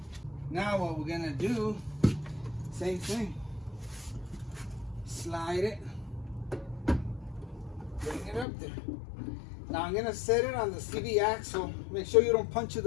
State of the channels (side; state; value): right; drops out; at 8.5 s